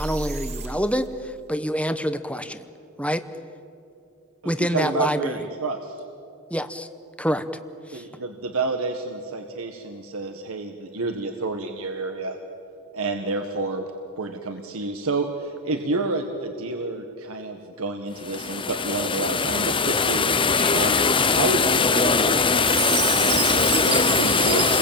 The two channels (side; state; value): both; normal; correlation 0.14